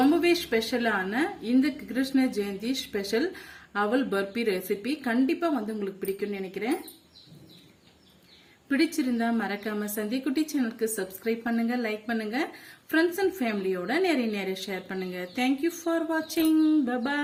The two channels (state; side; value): identical; both; correlation 1.00